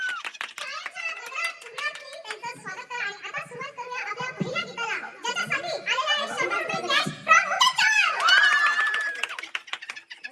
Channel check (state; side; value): identical; both; correlation 1.00